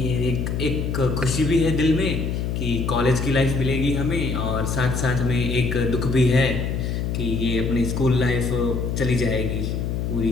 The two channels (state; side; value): noise; left; hum, 1 dB below the sound